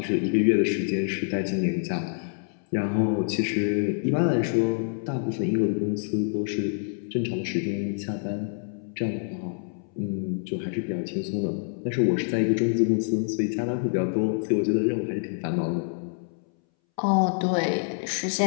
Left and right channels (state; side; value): silent; right; 61 dB below the other